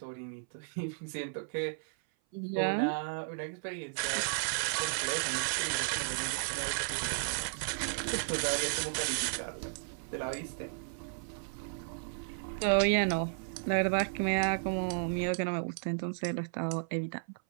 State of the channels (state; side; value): silent; left; 55 dB below the other